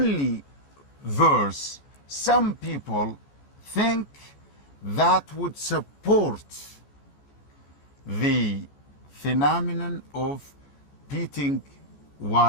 verse some people think that would support the phenomenon of beating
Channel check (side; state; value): right; late; 14 ms